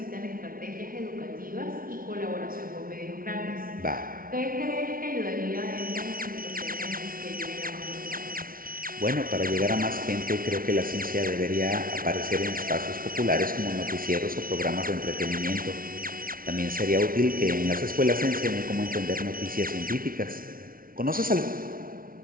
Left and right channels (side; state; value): left; late; 0.42 ms